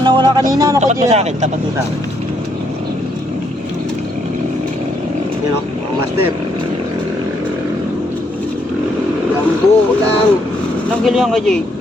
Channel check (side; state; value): both; normal; correlation 0.73